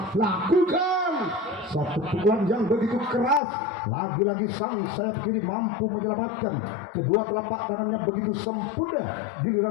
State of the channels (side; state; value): right; drops out; at 3.4 s